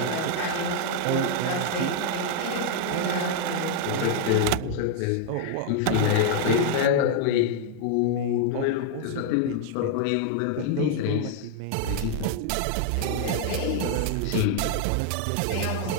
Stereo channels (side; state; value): both; different; correlation 0.00